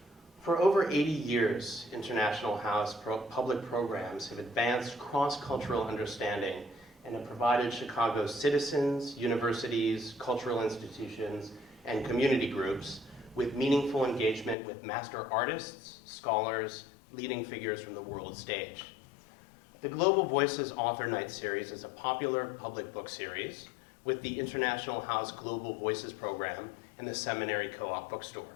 For over 80 years, International House public programs have advanced cross-cultural understanding and have provided Chicago's citizens, universities, cultural institutions, and community groups with meaningful engagement with master artists, scholars, leading figures from the world stage. The Global Voices Author Night series is a popular public book series with the International House Global Voices program and the Seminary Co-op bookstore.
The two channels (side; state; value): right; drops out; at 14.6 s